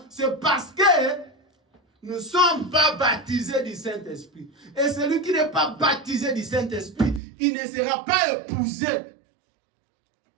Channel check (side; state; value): left; drops out; at 7.2 s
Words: c'est parce que nous ne sommes pas baptisés du Saint-Esprit. Et celui qui n'est pas baptisé du Saint-Esprit, il ne sera pas épousé.